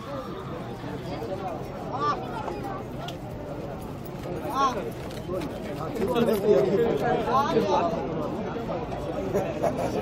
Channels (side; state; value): both; identical; correlation 1.00